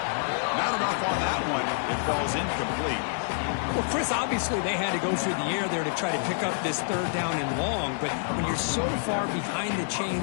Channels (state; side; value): silent; right; digital silence